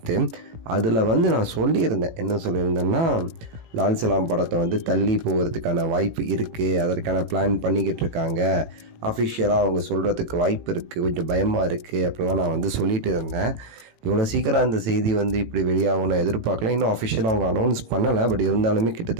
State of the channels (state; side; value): late; left; 18 ms